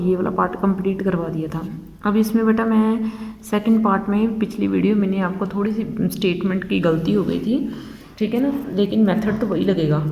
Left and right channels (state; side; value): identical; both; correlation 1.00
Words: वाला पार्ट कंप्लीट करवा दिया था। अब इसमें बेटा मैं सेकंड पार्ट में पिछली वीडियो मैंने आपको थोड़ी सी स्टेटमेंट की गलती हो गई थी, ठीक है ना, लेकिन मेथड तो वही लगेगा।